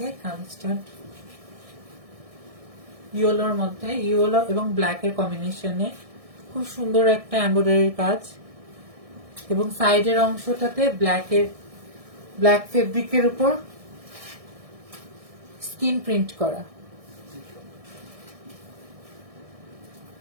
কামিজটা ইয়েলোর মধ্যে, ইয়েলো এবং ব্ল্যাক এর কম্বিনেশনে খুব সুন্দর একটা এমব্রয়ডারির কাজ, এবং সাইডের অংশটাতে ব্ল্যাক ফেব্রিকের উপর স্কিন প্রিন্ট করা।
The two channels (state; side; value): late; left; 1.6 ms